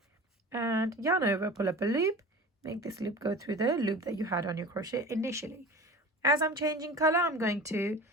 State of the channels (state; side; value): normal; both; correlation 0.36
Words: and yarn over, pull up a loop, make this loop go through the loop that you had on your crochet initially. As I'm changing color, I'm going to